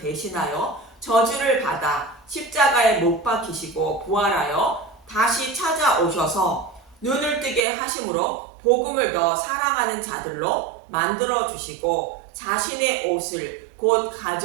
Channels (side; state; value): left; drops out; at 7.7 s